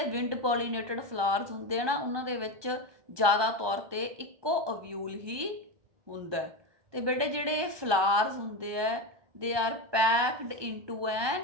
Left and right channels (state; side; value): late; left; 1.2 ms